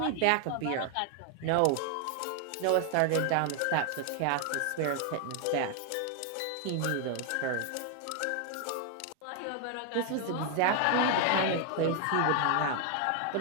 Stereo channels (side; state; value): both; different; correlation 0.00